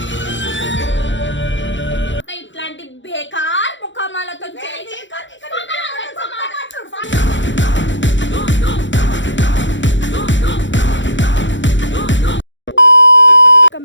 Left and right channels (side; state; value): right; late; 0.54 ms